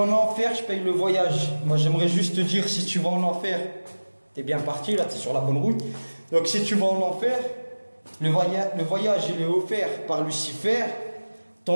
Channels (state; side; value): inverted; both; correlation -1.00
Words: enfer, je paye le voyage. Moi, j'aimerais juste te dire, si tu vas en enfer, t'es bien parti, là, t'es sur la bonne route. Donc, si tu vas en enfer, le voyage, il est offert par Lucifer.